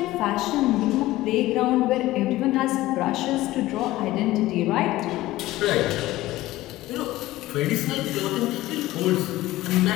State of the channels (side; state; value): right; quieter; 16.9 dB